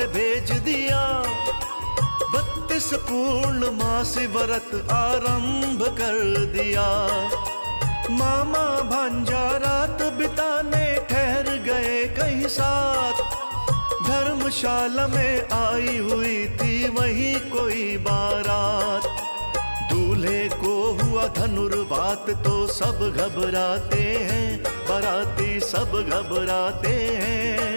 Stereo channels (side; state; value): both; inverted; correlation -1.00